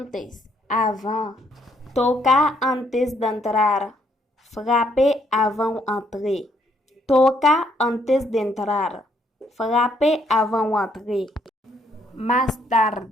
avant. Tocar antes de entrar. Frapper avant entrer. Tocar antes de entrar. Frapper avant entrer. Más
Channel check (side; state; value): both; normal; correlation 0.70